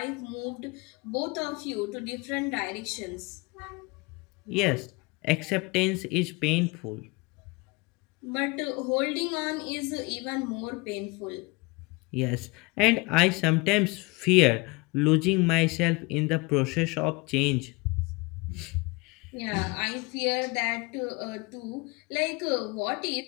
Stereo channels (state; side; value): quieter; right; 26.4 dB